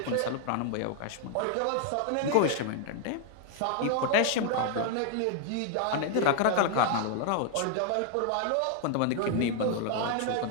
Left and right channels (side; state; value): both; different; correlation 0.00